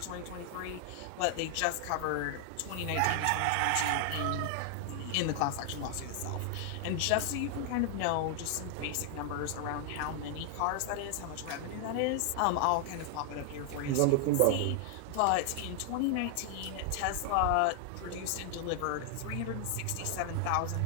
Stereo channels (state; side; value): different; both; correlation 0.00